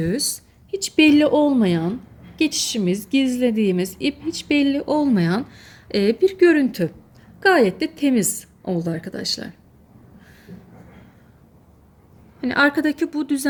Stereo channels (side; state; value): both; identical; correlation 1.00